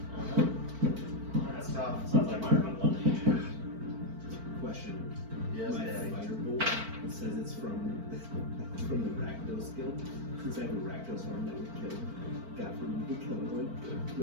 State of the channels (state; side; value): late; left; 4.5 ms